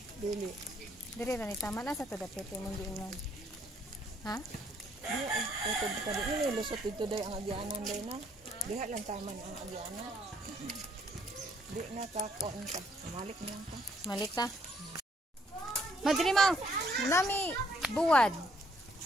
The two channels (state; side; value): normal; both; correlation 0.68